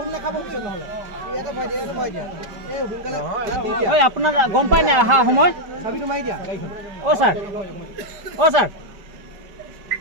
নেখাব পিছত নহলে এটা ভয় দিয়া এই হুনকালে ঐ আপোনাৰ গম পায় না আহা সময় চাবিটো মাৰি দিয়া ও স্যার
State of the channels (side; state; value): left; late; 5.2 ms